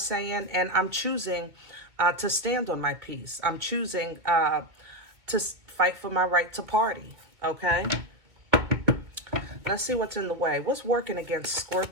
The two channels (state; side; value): late; left; 2.2 ms